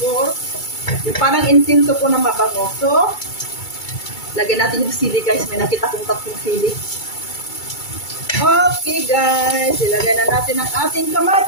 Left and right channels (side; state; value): right; late; 2.3 ms